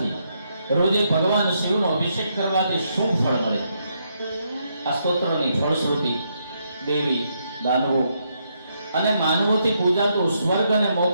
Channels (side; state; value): both; inverted; correlation -0.77